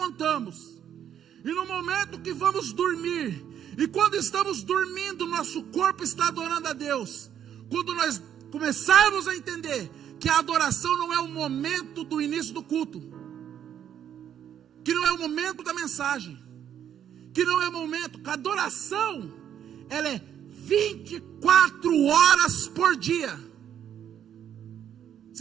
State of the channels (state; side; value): quieter; left; 9.6 dB